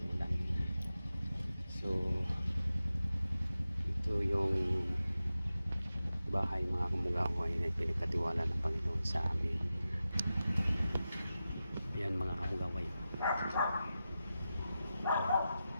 ulan. So ito yung bahay mga kamukaway na pinagkatiwala ng Panginoon sa amin. Yan mga kamukaway.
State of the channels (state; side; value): inverted; both; correlation -0.92